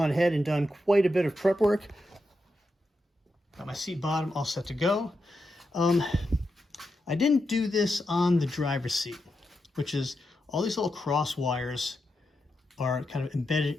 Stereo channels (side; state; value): both; normal; correlation 0.86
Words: ahead and done quite a bit of prep work. Got my seat bottom all set to go. I didn't do this on the driver's seat, which is all these little cross wires are kind of